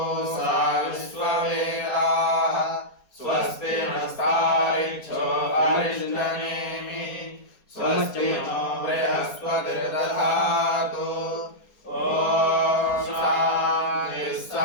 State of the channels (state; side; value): late; right; 4.3 ms